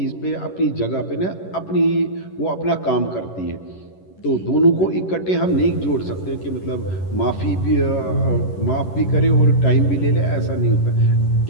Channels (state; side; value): late; right; 11 ms